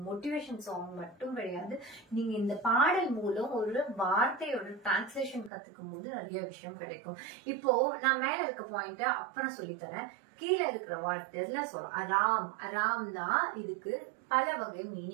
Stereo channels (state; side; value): drops out; left; at 5.5 s